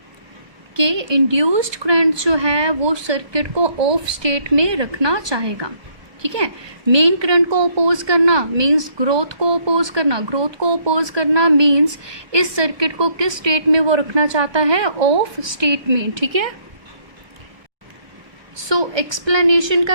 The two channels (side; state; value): left; late; 1.2 ms